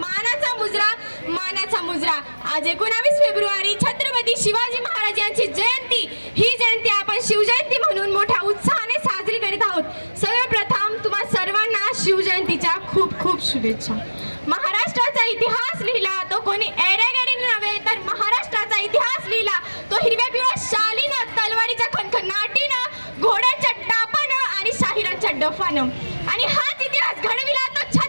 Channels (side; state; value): both; inverted; correlation -1.00